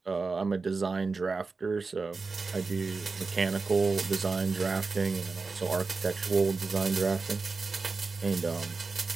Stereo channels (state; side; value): quieter; left; 4.2 dB